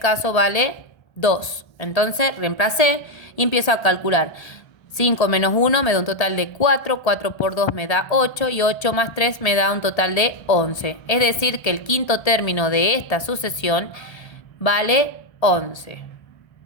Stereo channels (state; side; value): late; right; 1.3 ms